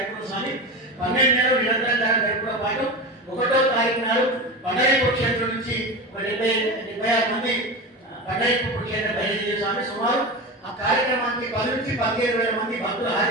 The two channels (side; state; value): both; normal; correlation 0.24